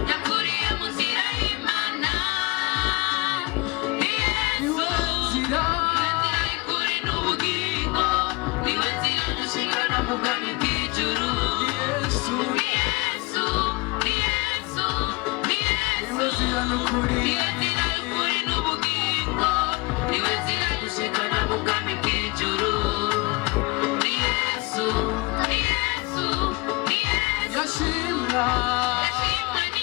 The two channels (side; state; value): right; quieter; 25.9 dB